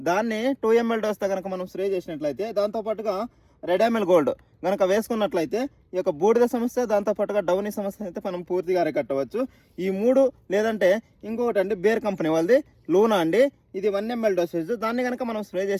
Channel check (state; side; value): identical; both; correlation 1.00